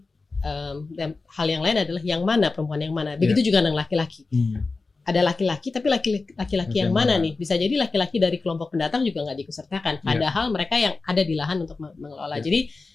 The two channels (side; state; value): right; quieter; 3.9 dB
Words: dan hal yang lain adalah yang mana perempuan yang mana. Begitu juga dengan laki-laki. Ada laki-laki, tapi laki-laki yang mana nih? Bisa jadi laki-laki dari kelompok pendatang juga nggak diikutsertakan. Padahal mereka yang ada di lahan untuk mengelola. Jadi